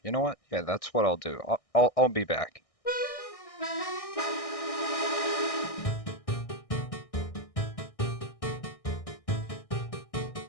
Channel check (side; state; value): right; late; 1.6 ms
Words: You know what? Yeah, that's what I'll do. I'll be back.